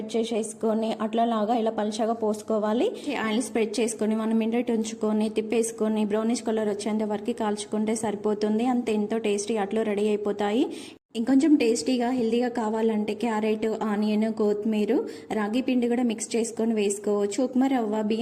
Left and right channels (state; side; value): identical; both; correlation 1.00